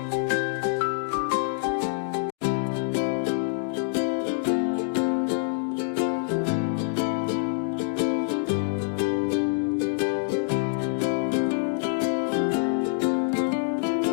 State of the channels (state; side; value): silent; right; digital silence